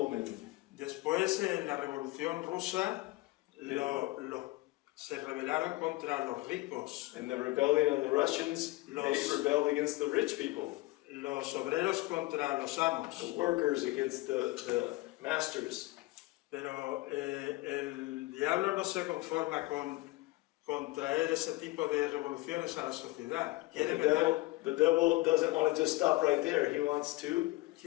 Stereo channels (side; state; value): right; quieter; 20.5 dB